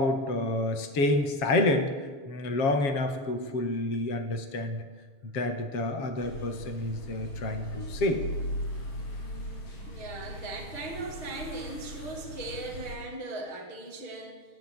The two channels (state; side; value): late; right; 7.3 ms